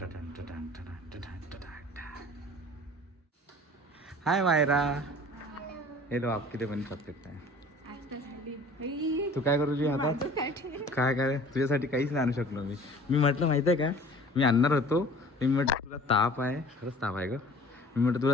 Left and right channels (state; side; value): normal; both; correlation 0.47